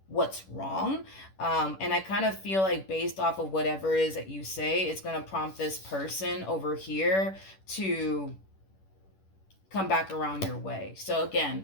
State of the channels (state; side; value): late; right; 10 ms